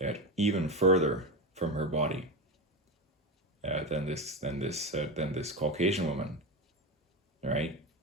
even further from her body than this Caucasian woman, right?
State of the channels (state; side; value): normal; both; correlation 0.18